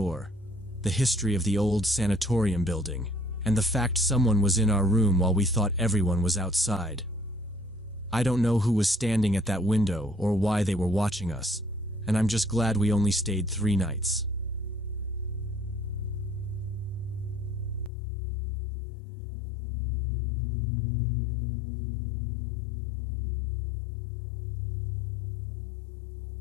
the history of the old sanatorium building, and the fact someone was in our room while we thought everyone was outside. I don't know who was standing at that window or why they were watching us, and I'm just glad we only stayed 3 nights.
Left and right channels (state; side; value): drops out; right; at 17.9 s